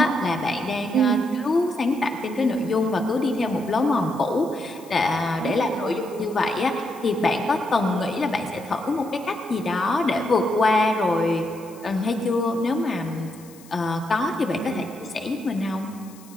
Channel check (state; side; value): noise; left; hiss, 23 dB below the sound